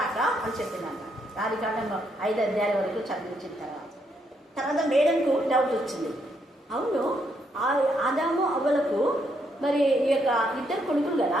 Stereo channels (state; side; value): normal; both; correlation 0.75